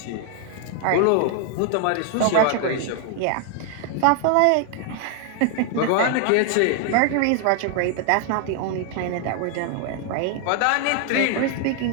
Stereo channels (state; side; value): different; both; correlation 0.00